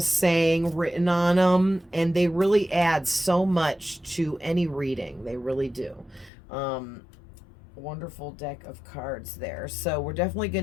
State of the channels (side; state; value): right; drops out; at 6.3 s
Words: written on them, and they really add so much to any reading. They really do. Wonderful deck of cards there. So we're definitely